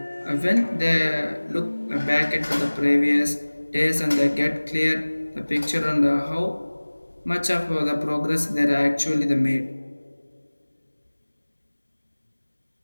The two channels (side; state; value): both; inverted; correlation -1.00